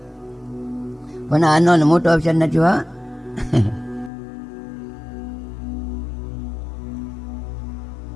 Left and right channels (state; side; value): drops out; right; at 4.1 s